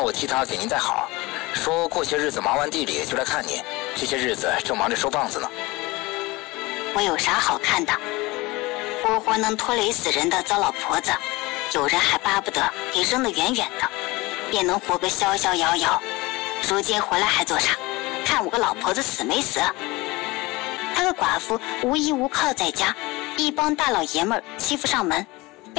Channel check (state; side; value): quieter; right; 22.0 dB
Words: 我替她给您带好，说过些日子忙完地里就来看您，这些日子正忙着收棒子呢。我有啥好看的？活活能拖累死人的糟老婆子，有人还巴不得给扔得远远的，便能活个逍逍遥遥。如今回来还做啥？看我个老婆子死没死？他个寡妇无依无靠在家，一帮大老爷们儿欺负上门，